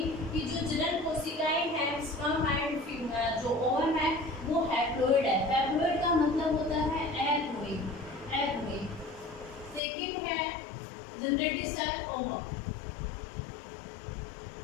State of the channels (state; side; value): drops out; right; at 9.8 s